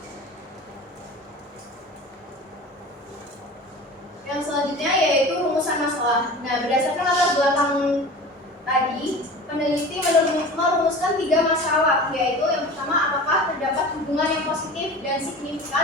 Yang selanjutnya yaitu rumusan masalah. Nah, berdasarkan latar belakang tadi, peneliti merumuskan 3 masalah, yaitu yang pertama, apakah terdapat hubungan yang positif dan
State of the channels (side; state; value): both; normal; correlation 0.37